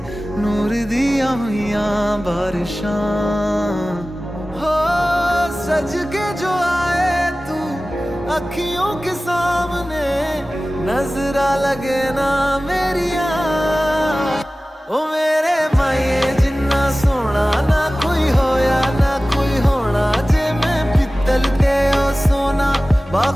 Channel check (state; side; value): normal; both; correlation 0.97